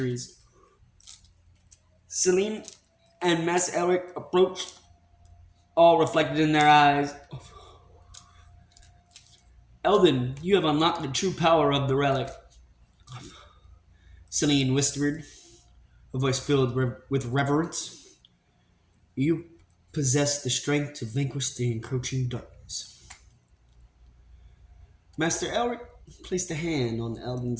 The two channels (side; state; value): both; identical; correlation 1.00